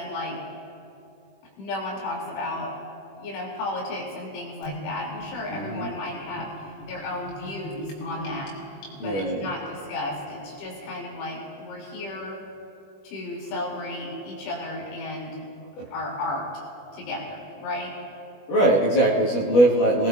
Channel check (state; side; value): late; right; 20 ms